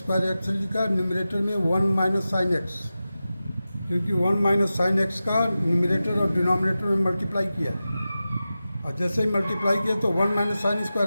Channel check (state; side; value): inverted; both; correlation -0.94